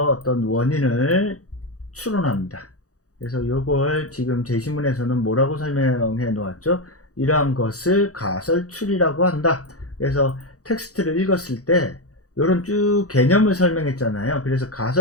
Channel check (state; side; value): late; right; 0.66 ms